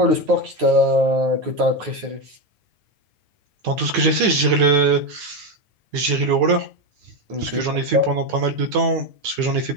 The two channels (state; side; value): late; left; 9.1 ms